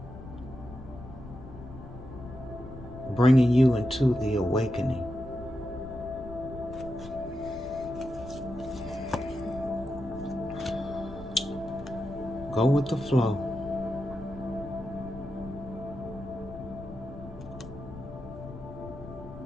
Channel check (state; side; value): noise; left; rumble, 13 dB below the sound